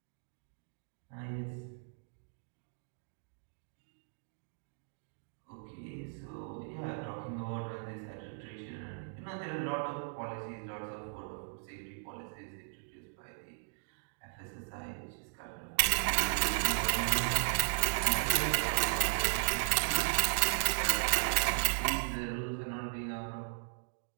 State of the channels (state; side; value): silent; left; digital silence